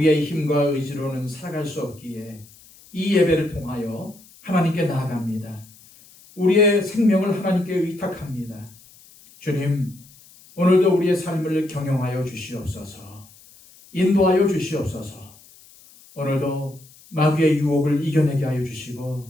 힘과 의지로는 살아갈 수 없기에 이 예배를 통하여 하나님께 나아갑니다. 우리의 생명을 하나님께 의탁합니다. 주님, 오늘도 우리의 삶을 경영하여 주시옵소서. 인도하여 주시옵소서. 오늘도 마귀의 유혹을 이겨내게 하여 주시고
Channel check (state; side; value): noise; left; hiss, 25 dB below the sound